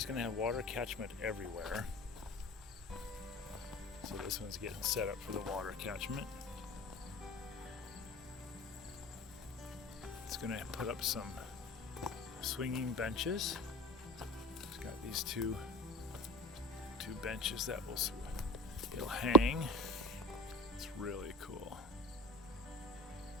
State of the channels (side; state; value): both; normal; correlation 0.35